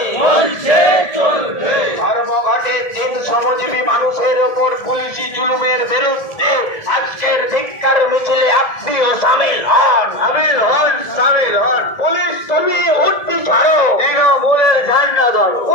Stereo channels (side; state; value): right; late; 1.7 ms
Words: ধর্মঘটে তিন শ্রমজীবী মানুষের ওপর পুলিশি জুলুমের বিরুদ্ধে আজকের ধিক্কার মিছিলে আপনিও সামিল হন, সামিল হন। পুলিশ তুমি উঠতি ছাড়ো, তৃণমূলের ঝান্ডা ধরো।